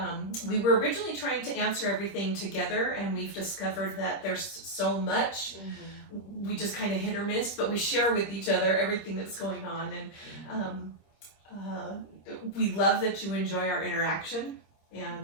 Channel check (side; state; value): right; late; 25 ms